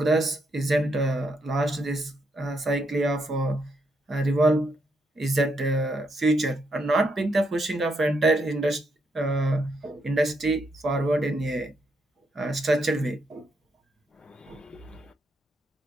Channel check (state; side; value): normal; both; correlation 0.78